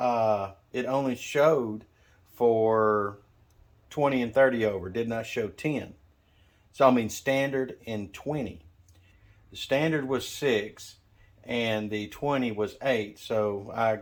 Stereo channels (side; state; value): both; identical; correlation 1.00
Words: it only showed for 20 and 30 over, did not show 10. So I mean standard and 20. The standard was 6 and the 20 was 8. So I